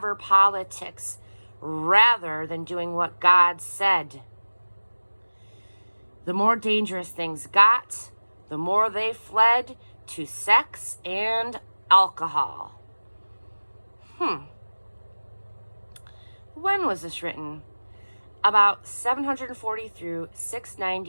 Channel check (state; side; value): inverted; both; correlation -1.00